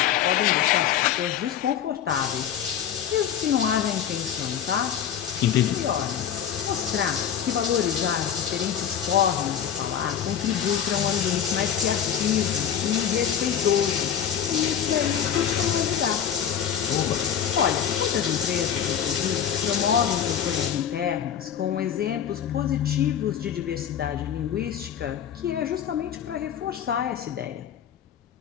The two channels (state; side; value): quieter; right; 8.9 dB